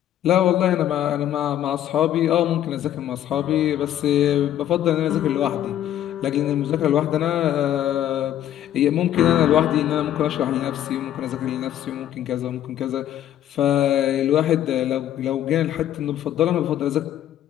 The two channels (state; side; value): quieter; right; 11.6 dB